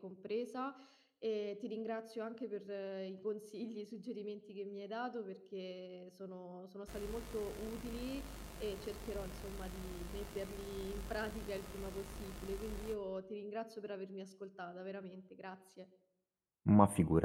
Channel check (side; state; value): both; identical; correlation 1.00